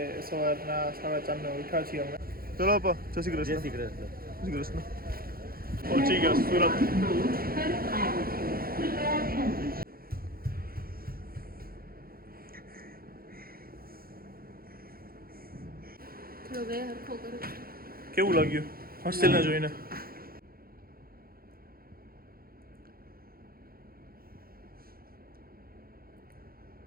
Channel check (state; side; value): late; left; 0.43 ms